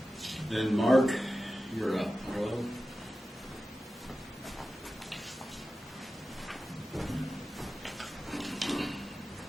Then Mark, you're up. Hello?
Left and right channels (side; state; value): both; normal; correlation 0.94